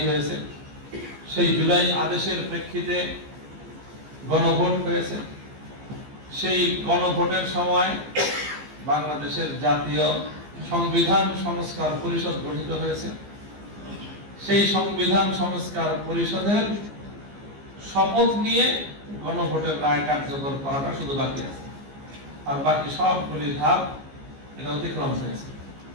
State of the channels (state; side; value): late; left; 15 ms